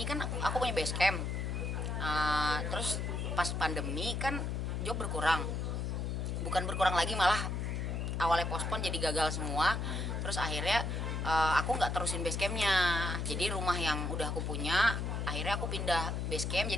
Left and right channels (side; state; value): left; noise; hum, 1 dB below the sound